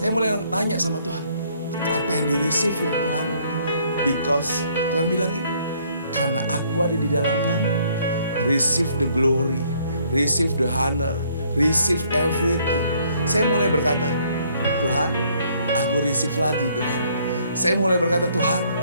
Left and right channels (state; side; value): inverted; both; correlation -0.65